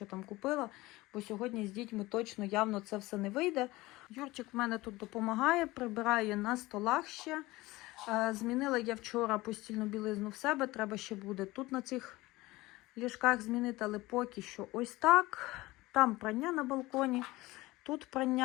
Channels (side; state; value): right; quieter; 19.7 dB